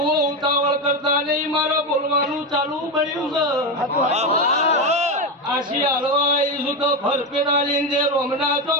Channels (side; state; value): both; normal; correlation 0.13